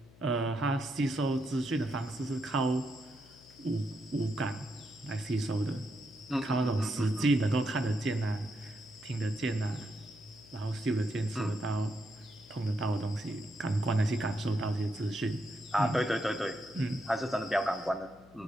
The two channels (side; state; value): left; noise; hum, 24 dB below the sound